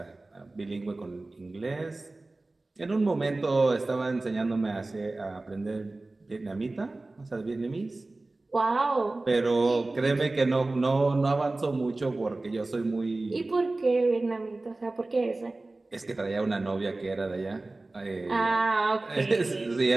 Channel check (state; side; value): quieter; left; 3.1 dB